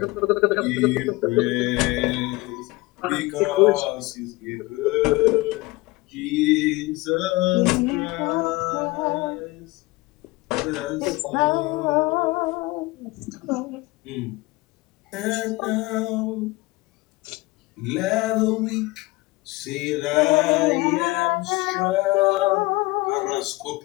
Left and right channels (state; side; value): quieter; right; 21.7 dB